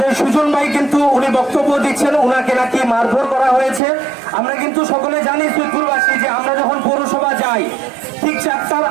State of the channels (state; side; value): drops out; left; at 3.8 s